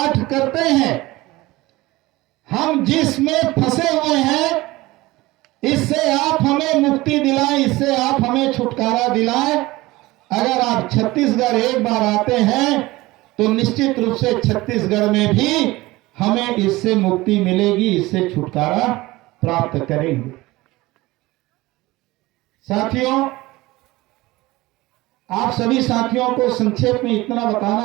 करते हैं। हम जिसमें फंसे हुए हैं, इससे आप हमें मुक्ति दिलाएं, इससे आप हमें छुटकारा दिलाएं। अगर आप छत्तीसगढ़ एक बार आते हैं तो निश्चित रूप से छत्तीसगढ़ में भी हमें इससे मुक्ति मिलेगी, इससे छुटकारा प्राप्त करेंगे। साथियों, आप सभी साथियों को संक्षेप में इतना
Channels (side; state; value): left; quieter; 19.8 dB